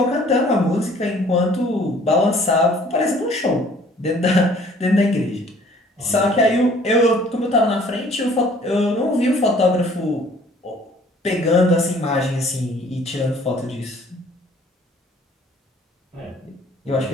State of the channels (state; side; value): normal; both; correlation 0.55